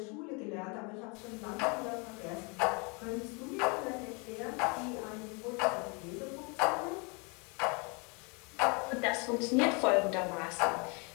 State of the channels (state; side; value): quieter; right; 31.7 dB